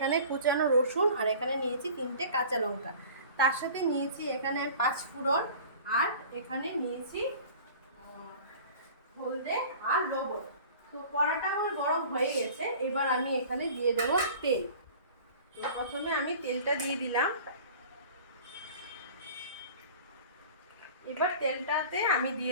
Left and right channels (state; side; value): inverted; both; correlation -0.43